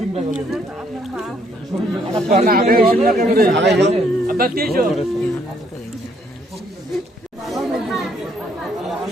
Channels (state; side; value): normal; both; correlation 0.68